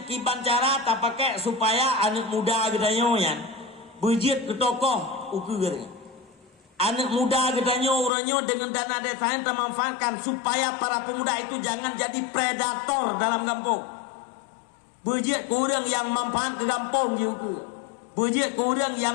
kiban cara tak pakai supaya anak muda gedanya yan bujit ke tokoh ukur. Anak muda gedanya orangnya dengan dana desanya termanfaatkan supaya para pemuda itu jangan jadi predator dalam kampung. Bujit kurang yang manfaat ke kampung juga. Bujit kurang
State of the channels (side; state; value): right; drops out; at 8.1 s